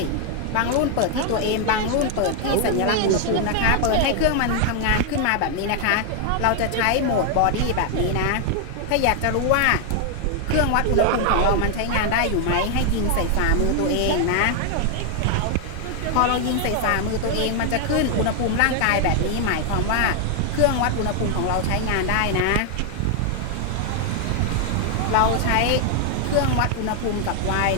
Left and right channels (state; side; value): different; both; correlation 0.00